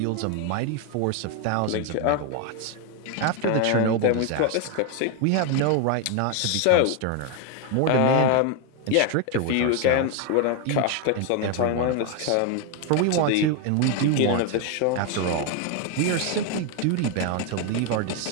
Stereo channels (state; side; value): different; both; correlation 0.01